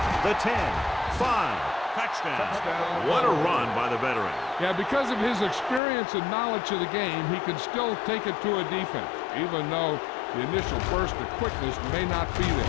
the 10, 5. Touchdown. What a run by the veteran. Yeah, because of his experience and knowledge of the game, he can still take it to a defense, even though the initial burst of quickness may not be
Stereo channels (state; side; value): drops out; right; at 5.8 s